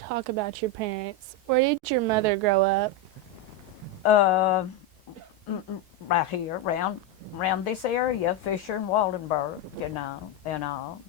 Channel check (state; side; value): late; left; 1.4 ms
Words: talk about your parents. Where did your mother grow up? Right here, around around this area, Fisher and Waldenburg, and all,